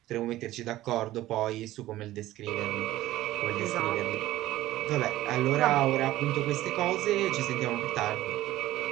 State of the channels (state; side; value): quieter; left; 15.5 dB